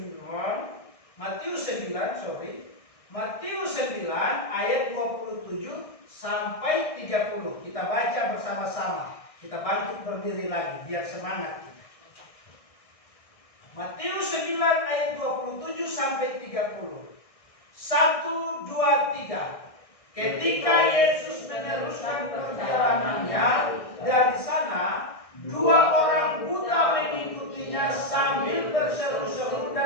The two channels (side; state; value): right; late; 1.6 ms